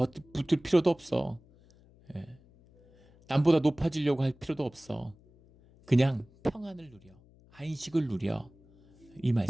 필요도 없어. 남보다 높아지려고 할 필요도 없어. 그냥 평안을 누려. 안식을 누려. 이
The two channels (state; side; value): noise; left; hum, 27 dB below the sound